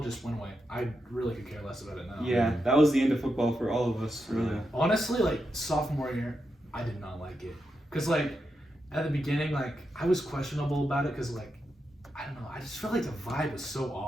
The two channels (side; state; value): both; normal; correlation 0.86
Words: went away. I really could care less about it now. Yeah, that was the end of football for all of us, really. Honestly, like sophomore year, I did not like it. Cause like at the beginning, like I was questionable about it. Cause like I don't know, I just felt like the vibe was so